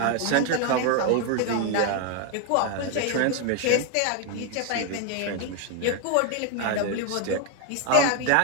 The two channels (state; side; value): different; both; correlation 0.01